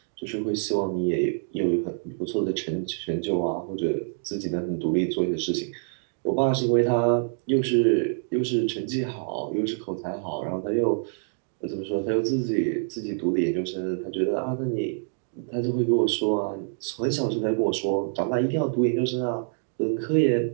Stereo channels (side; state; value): left; silent; digital silence